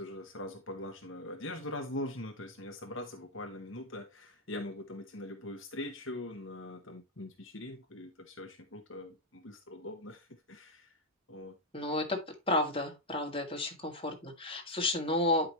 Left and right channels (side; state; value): both; normal; correlation 0.02